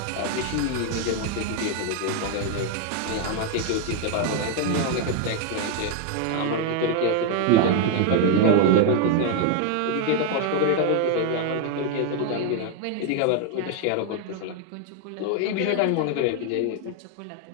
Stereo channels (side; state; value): both; different; correlation 0.00